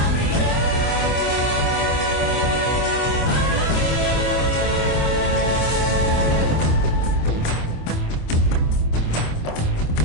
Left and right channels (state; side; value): late; right; 25 ms